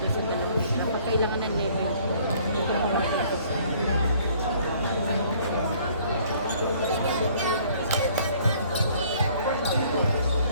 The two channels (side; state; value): both; inverted; correlation -0.58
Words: sa dalawang nila pag kailangan ng level dito mo mag-request